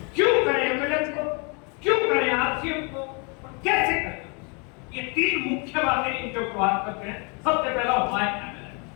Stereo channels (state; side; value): quieter; right; 33.8 dB